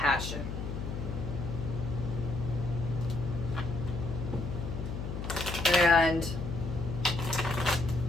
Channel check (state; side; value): noise; left; hum, 5 dB below the sound